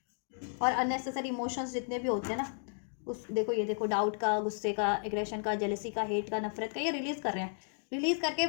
और अननेसेसरी इमोशंस जितने भी होते हैं ना, उस देखो, ये देखो, डाउट का, गुस्से का, एग्रेशन का, जेलसी का, हेट का, नफरत का, ये रिलीज़ कर रहे हैं। रिलीज़ करके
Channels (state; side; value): silent; right; 55 dB below the other